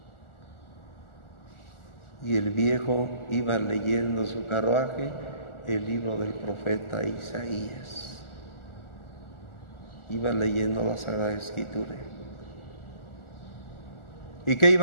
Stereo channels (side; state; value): right; late; 1.4 ms